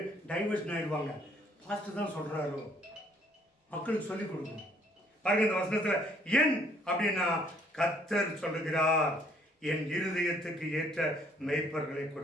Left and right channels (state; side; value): normal; both; correlation 0.63